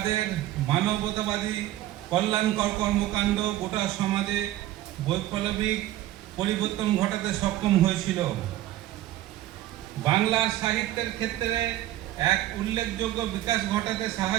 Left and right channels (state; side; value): quieter; left; 14.4 dB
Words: মানবতাবাদী কল্যাণকর কর্মকাণ্ড গোটা সমাজে বৈপ্লবিক পরিবর্তন ঘটাতে সক্ষম হয়েছিল। বাংলার সাহিত্যের ক্ষেত্রে এক উল্লেখযোগ্য বিকাশ ঘটাতে